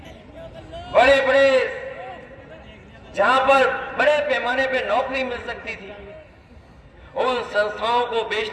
बड़े बड़े जहां पर बड़े पैमाने पे नौकरी मिल सकती थी, उन संस्थाओं को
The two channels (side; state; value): both; identical; correlation 1.00